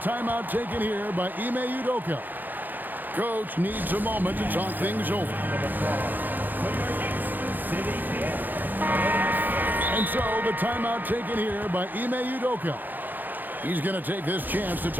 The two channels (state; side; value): late; left; 0.087 ms